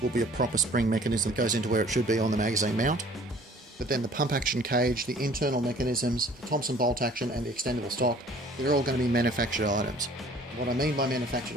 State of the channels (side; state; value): both; normal; correlation 0.52